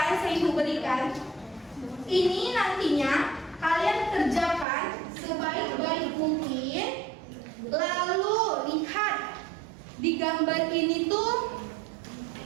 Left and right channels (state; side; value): drops out; left; at 4.7 s